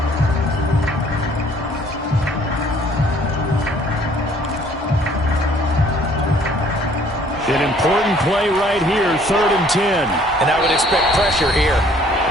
An important play right here, 3rd and 10. And I would expect pressure here.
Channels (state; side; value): normal; both; correlation 0.58